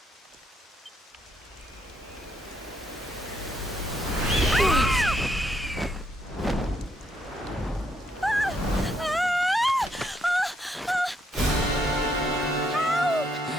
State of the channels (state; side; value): normal; both; correlation 0.74